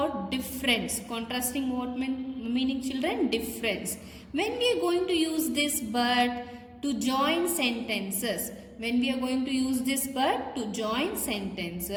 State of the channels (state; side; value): identical; both; correlation 1.00